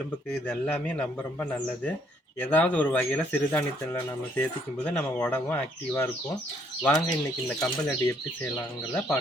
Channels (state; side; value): normal; both; correlation 0.67